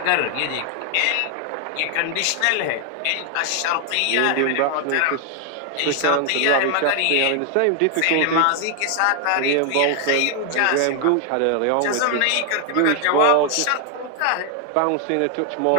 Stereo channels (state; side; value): different; both; correlation 0.00